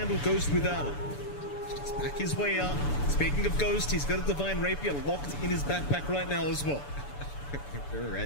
Ghost without it. Just back his way up. Speaking of Ghost, he's got a Divine Rapier locked in his backpack right now as well. We're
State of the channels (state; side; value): late; right; 6.9 ms